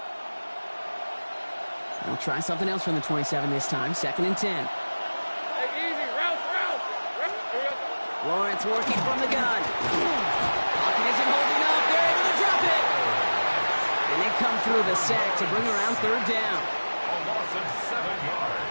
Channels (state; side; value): inverted; both; correlation -1.00